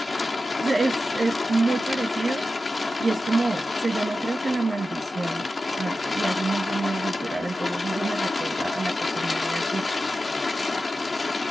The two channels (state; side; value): normal; both; correlation 0.92